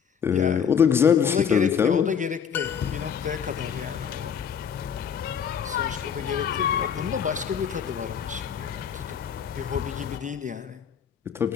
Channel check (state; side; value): quieter; right; 7.5 dB